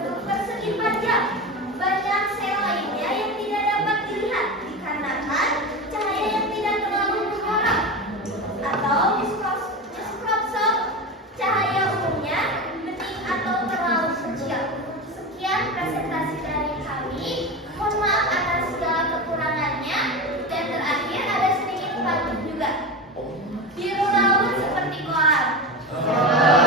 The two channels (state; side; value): normal; both; correlation 0.23